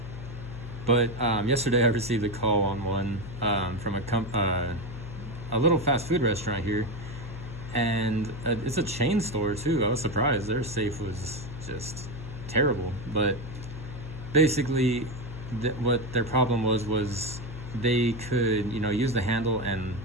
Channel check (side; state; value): left; noise; hum, 10 dB below the sound